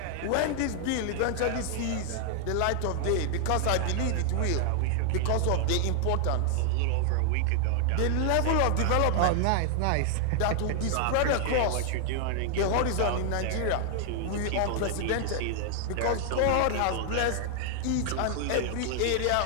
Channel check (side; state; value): both; different; correlation 0.00